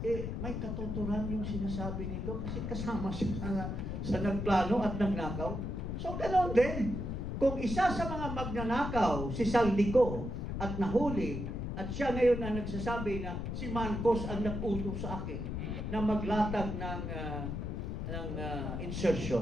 may katuturan yung sinasabi nito kasi kasama siya sa nagplano at nagnakaw. So ganoon din, kung isa sa mga magnanakaw si Saldico at nahuli, at siya ngayon na nagsasabi na si Marcos ang nag-utos sa akin na maglatag ng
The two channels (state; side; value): noise; left; rumble, 4 dB below the sound